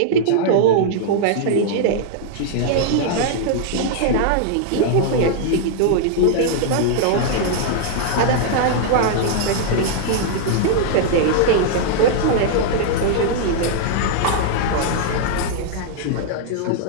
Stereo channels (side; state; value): both; different; correlation -0.01